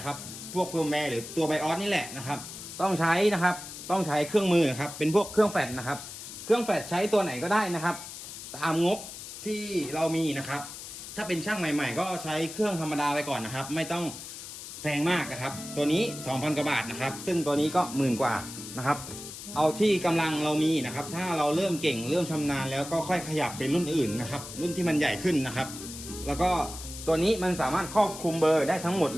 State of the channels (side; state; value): left; noise; hiss, 11 dB below the sound